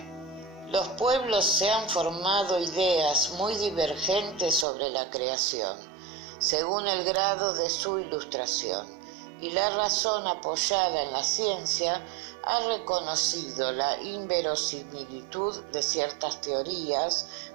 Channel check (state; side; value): drops out; left; at 4.7 s